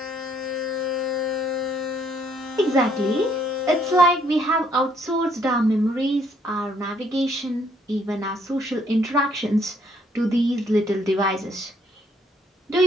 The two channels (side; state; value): both; normal; correlation 0.67